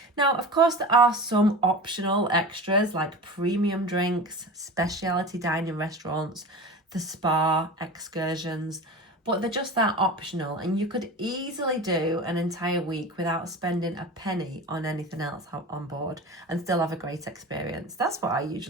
Now, of course, there are some optional extras like premium drinks, specialty dining restaurants, the spa, excursions, but they're just that optional, and you could easily do an entire week without spending a penny on anything else on board and still have a great experience. That's what I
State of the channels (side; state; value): both; normal; correlation 0.32